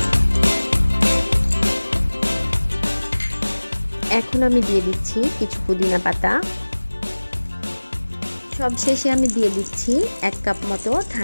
এখন আমি দিয়ে দিচ্ছি কিছু পুদিনা পাতা। সবশেষে আমি দিয়ে দিচ্ছি 1 কাপ মতো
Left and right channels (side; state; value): both; inverted; correlation -1.00